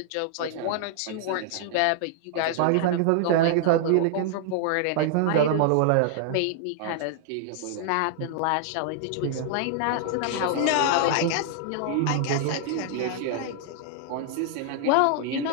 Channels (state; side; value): different; both; correlation -0.01